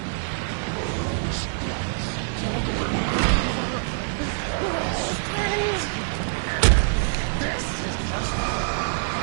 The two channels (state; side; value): silent; left; digital silence